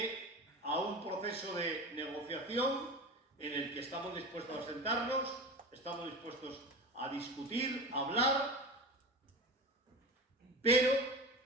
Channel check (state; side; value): normal; both; correlation 0.30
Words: a un proceso de negociación en el que estamos dispuestos a sentarnos, estamos dispuestos a discutir, a hablar, pero,